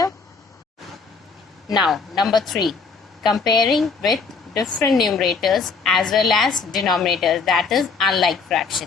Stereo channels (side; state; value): right; quieter; 4.9 dB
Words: Now, number 3, comparing with different numerators as well as denominators, that is unlike fraction.